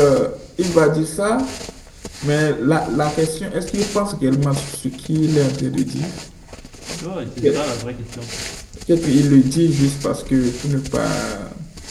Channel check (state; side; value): identical; both; correlation 1.00